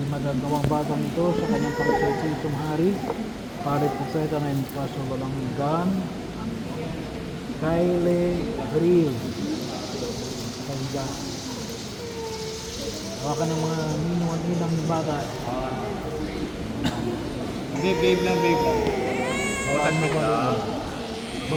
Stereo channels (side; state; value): both; identical; correlation 1.00